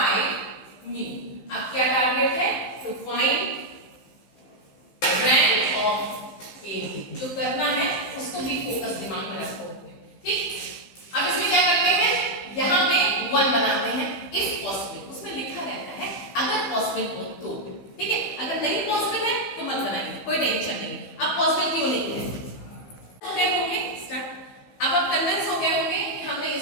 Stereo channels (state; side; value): late; right; 15 ms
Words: mu. अब क्या टारगेट है, टू फाइंड रैंक ऑफ ए। जो करना है उसको भी फोकस दिमाग में रखो, ठीक। अब इसमें क्या करते हैं, यहाँ पे 1 बनाते हैं इफ पॉसिबल, उसमें लिखा रहता है अगर पॉसिबल हो तो, ठीक है। अगर नहीं पॉसिबल है तो मत बनाइए, कोई टेंशन नहीं। अब पॉसिबल क्यों नहीं है, हो गए होंगे स्टार्ट। अब आप कन्विंस हो गए होंगे कि हमने